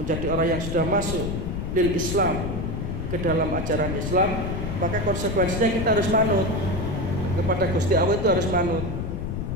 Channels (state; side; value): noise; left; rumble, 4 dB below the sound